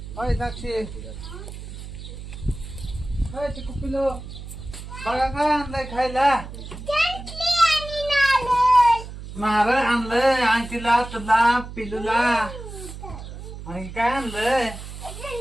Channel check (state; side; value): noise; right; hum, 11 dB below the sound